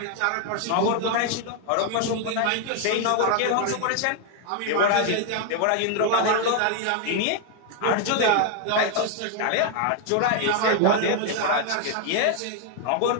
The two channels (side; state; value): both; different; correlation 0.00